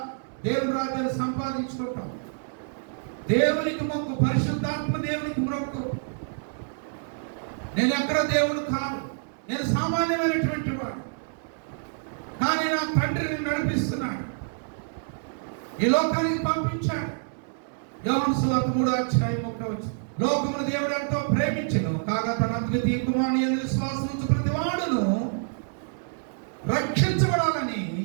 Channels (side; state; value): left; silent; 59 dB below the other